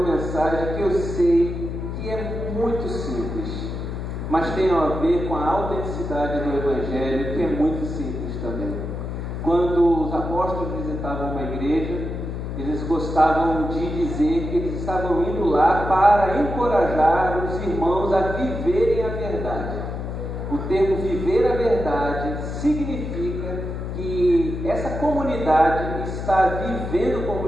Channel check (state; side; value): noise; left; hum, 5 dB below the sound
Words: mensagem que eu sei que é muito simples, mas tem a ver com a autenticidade do Evangelho, que é muito simples também. Quando os apóstolos visitavam uma igreja, eles gostavam de dizer que eles estavam indo lá para encorajar os irmãos a viverem a verdade. O termo viver a verdade significa que essa comunidade está vivendo